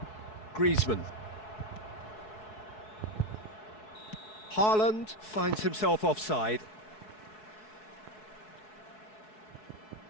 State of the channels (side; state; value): right; late; 4.7 ms